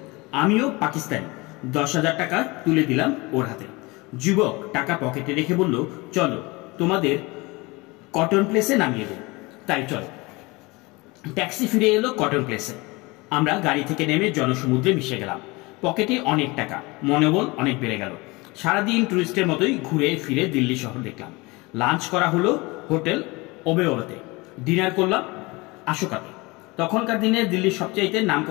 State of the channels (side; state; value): right; quieter; 24.2 dB